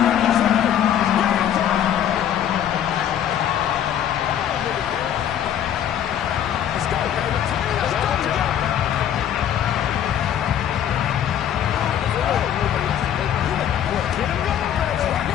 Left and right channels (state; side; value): quieter; right; 10.0 dB